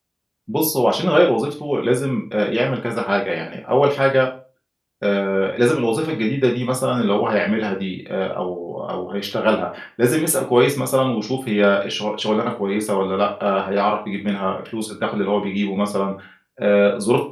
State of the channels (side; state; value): both; identical; correlation 1.00